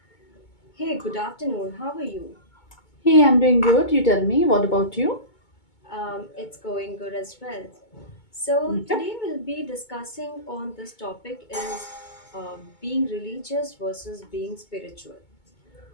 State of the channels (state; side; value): late; right; 2.2 ms